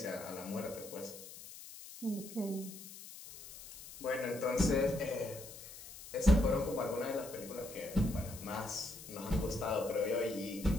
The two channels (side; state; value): left; noise; hiss, 14 dB below the sound